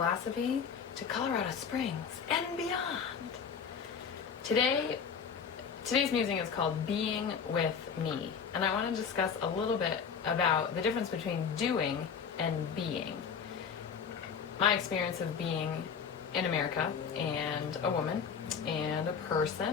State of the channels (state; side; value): quieter; right; 6.6 dB